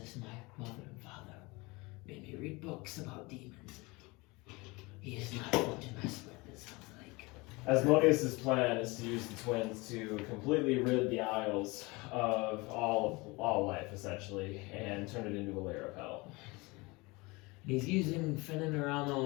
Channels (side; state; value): right; quieter; 24.7 dB